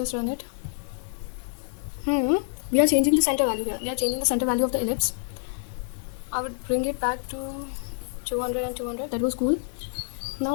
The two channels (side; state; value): right; silent; 60 dB below the other